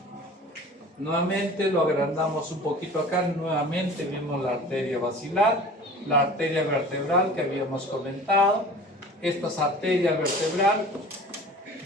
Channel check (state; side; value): normal; both; correlation 0.41